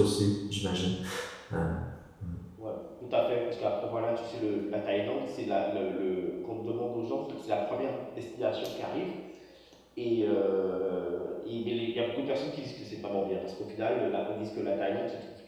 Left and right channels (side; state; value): both; identical; correlation 1.00